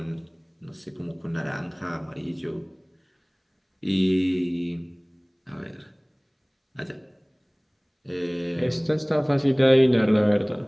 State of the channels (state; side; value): identical; both; correlation 1.00